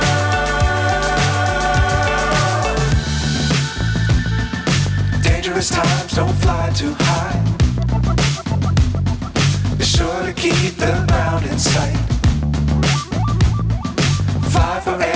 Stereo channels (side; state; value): both; identical; correlation 1.00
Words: Times don't fly too high. Be sure to keep the ground in sight. Fly